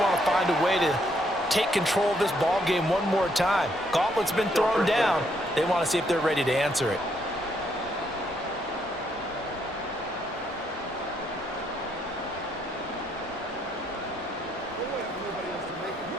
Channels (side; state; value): both; normal; correlation 0.73